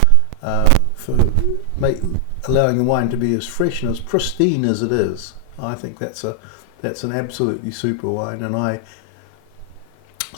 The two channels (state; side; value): different; both; correlation 0.00